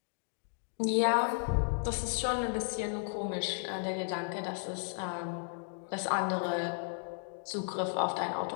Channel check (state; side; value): silent; right; 55 dB below the other